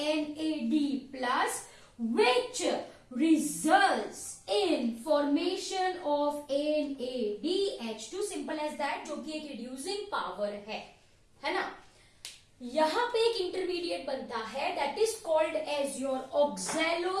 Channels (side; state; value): both; identical; correlation 1.00